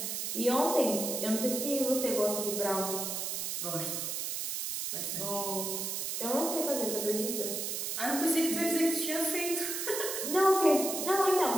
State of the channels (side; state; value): right; noise; hiss, 3 dB below the sound